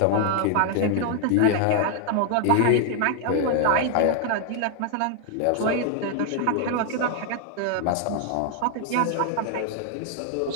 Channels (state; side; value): different; both; correlation 0.00